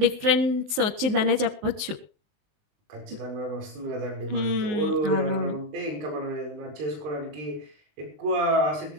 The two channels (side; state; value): left; late; 20 ms